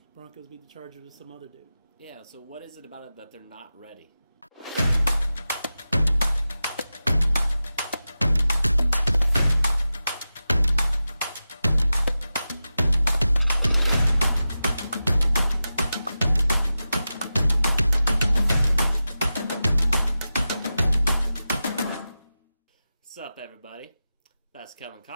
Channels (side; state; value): both; inverted; correlation -0.93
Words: Broncos beat the Chargers with some other dude. Yeah, so what is it about it that they're not ready? What's up, everybody? That's Kellen